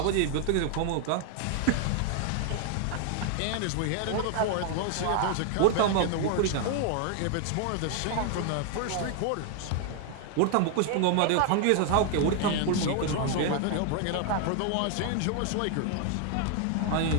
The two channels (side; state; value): both; different; correlation 0.00